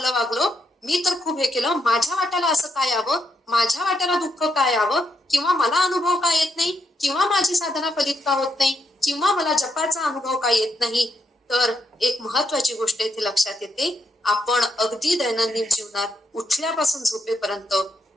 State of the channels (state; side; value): normal; both; correlation 0.80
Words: वागलो, मी तर खूप हे केलं, माझ्या वाट्याला असं काय यावं, माझ्या वाट्याला दुःख काय यावं, किंवा मला अनुभव का येत नाही, किंवा माझी साधना फलित का होत नाही, किंवा मला जपाचा अनुभव का येत नाही. तर एक महत्वाची गोष्ट इथे लक्षात येते, आपण अगदी दैनंदिन जीवनात उठल्यापासून झोपेपर्यंत